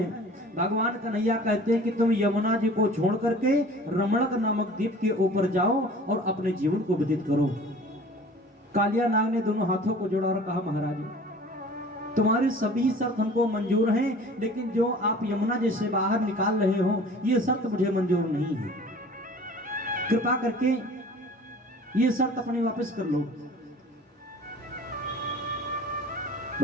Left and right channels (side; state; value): both; normal; correlation 0.45